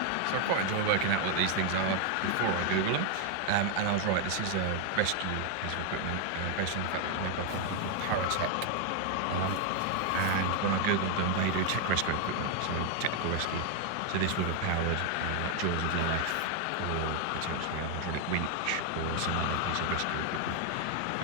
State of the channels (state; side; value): different; both; correlation 0.00